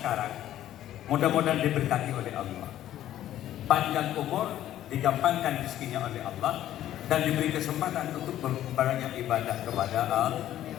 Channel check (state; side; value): quieter; right; 12.5 dB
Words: mudah-mudahan diberkati oleh Allah. Panjang umur, digampangkan rezekinya oleh Allah, dan diberi kesempatan untuk berbanyak ibadah kepada Allah.